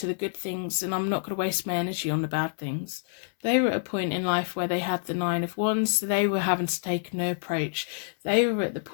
the good things and I'm not going to waste my energy on the bad things. They were at a point in life where they had the Nine of Wands, so they were having to take a new approach. They were at the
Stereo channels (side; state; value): right; silent; 60 dB below the other